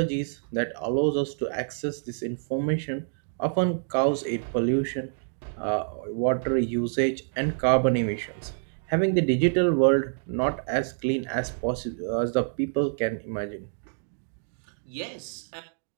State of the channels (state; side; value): silent; left; digital silence